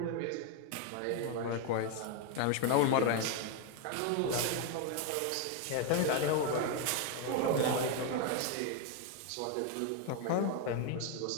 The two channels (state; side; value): different; both; correlation 0.01